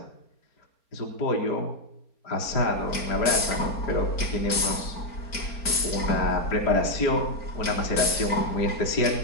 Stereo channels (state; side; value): late; right; 4.3 ms